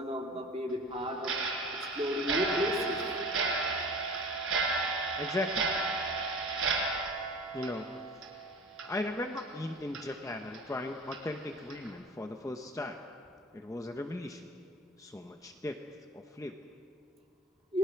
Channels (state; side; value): normal; both; correlation 0.39